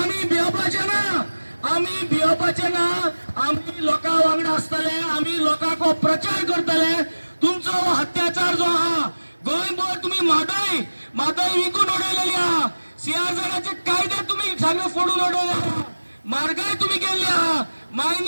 भिवपाचे ना, आमी भिवपाचे ना। आमी लोकां वांगडा आसतले, आमी लोकांक हो प्रचार करतले। तुमचो अत्याचार जो आहा गोंयभर तुमी म्हादय विकून उडयलेली आहा, सीआरझेडाचे कायदे तुमी सगळे फोडून उडयले, म्हारगाय तुमी केल्ली आहा,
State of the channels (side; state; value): both; inverted; correlation -1.00